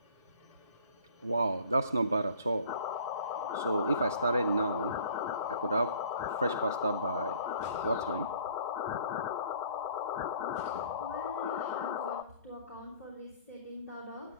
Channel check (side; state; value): both; inverted; correlation -0.54